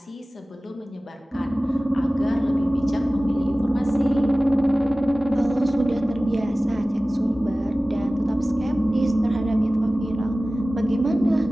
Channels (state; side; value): normal; both; correlation 0.97